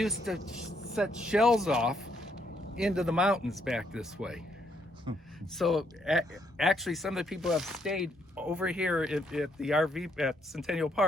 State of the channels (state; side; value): normal; both; correlation 0.73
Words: to set shells off into the mountains back this way. So actually, some of the people have stayed over here at the RV at Centennial